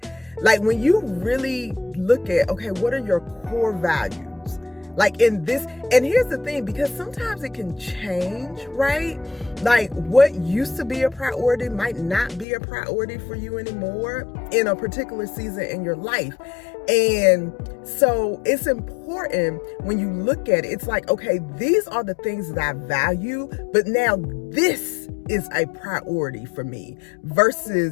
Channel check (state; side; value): drops out; right; at 12.5 s